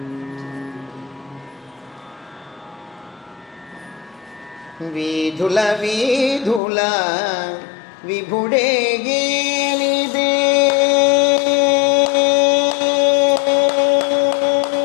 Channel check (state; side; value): drops out; right; at 6.6 s